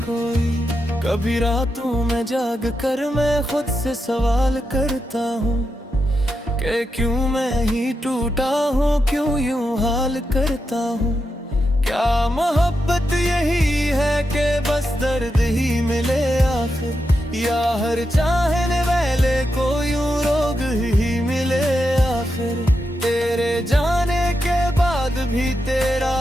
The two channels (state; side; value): normal; both; correlation 0.86